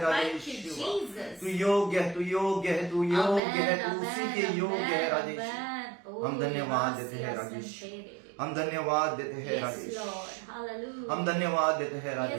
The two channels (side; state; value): left; drops out; at 3.4 s